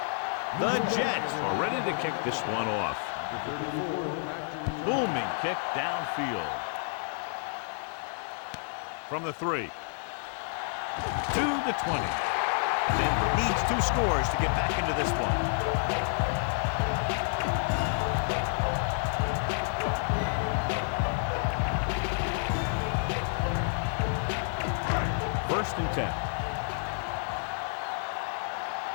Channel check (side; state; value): right; silent; 58 dB below the other